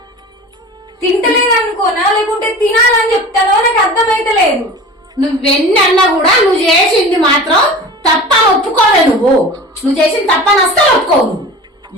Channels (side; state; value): both; normal; correlation 0.36